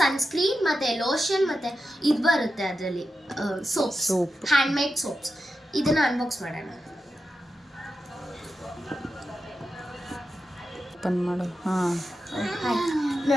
ಸನ್ಸ್ಕ್ರೀನ್ ಮತ್ತು ಲೋಷನ್ ಮತ್ತು ಇದು ಬರುತ್ತೆ ಅದರಲ್ಲಿ ಸೋಪ್ಸ್, ಹ್ಯಾಂಡ್ಮೇಡ್ ಸೋಪ್ಸ್. ಇದನ್ನು ಅನ್ಬಾಕ್ಸ್ ಮಾಡೋಣ. ಓಪನ್ ಮಾಡು. ಹಾಂ,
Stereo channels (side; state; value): both; normal; correlation 0.90